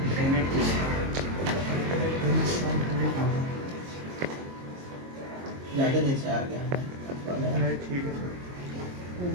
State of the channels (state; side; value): late; left; 22 ms